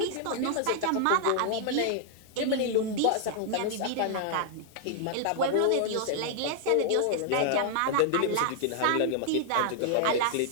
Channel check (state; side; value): different; both; correlation -0.01